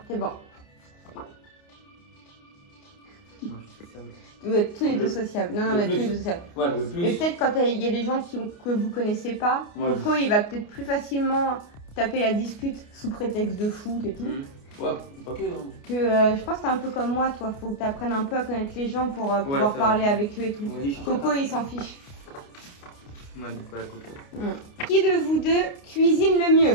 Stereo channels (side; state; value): right; late; 29 ms